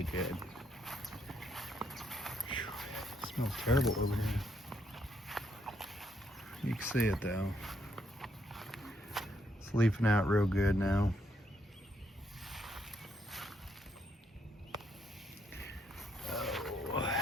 good. Whew, it smells terrible over here. You can see it though. It's leafing out real good now. Oh, you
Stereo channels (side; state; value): both; normal; correlation 0.74